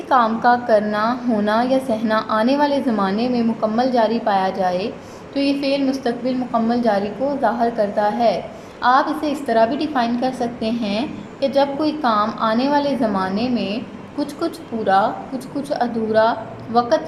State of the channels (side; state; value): both; identical; correlation 1.00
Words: काम का करना, होना या सहना आने वाले ज़माने में मुकम्मल जारी पाया जाए तो ये फ़ेल मुस्तक़बिल मुकम्मल जारी को ज़ाहिर करता है। आप इसे इस तरह भी डिफ़ाइन कर सकते हैं कि जब कोई काम आने वाले ज़माने में कुछ कुछ पूरा, कुछ कुछ अधूरा, वक़्त